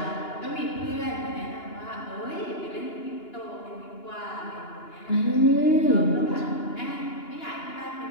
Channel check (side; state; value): right; late; 2.9 ms